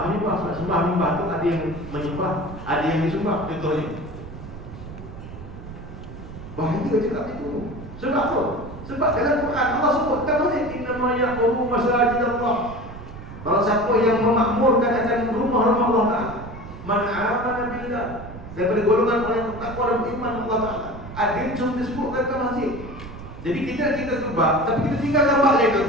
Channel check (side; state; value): right; noise; rumble, 13 dB below the sound